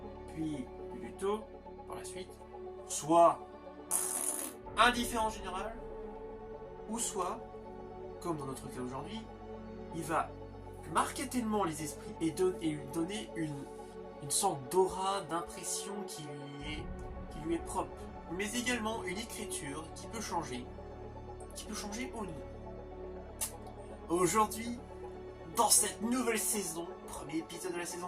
puis du tôt par la suite. Soit indifférent général, ou soit, comme dans notre cas aujourd'hui, il va marquer tellement les esprits et lui donner une sorte d'aura, d'impression qui lui est propre, mais également une écriture qui peut changer au nez. Aujourd'hui, dans cette nouvelle saison, premier épisode de la saison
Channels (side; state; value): both; identical; correlation 1.00